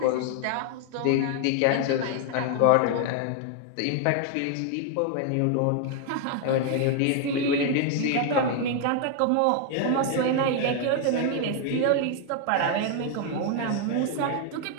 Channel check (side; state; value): both; different; correlation 0.00